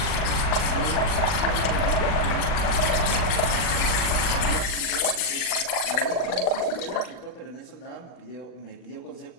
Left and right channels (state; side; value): late; right; 40 ms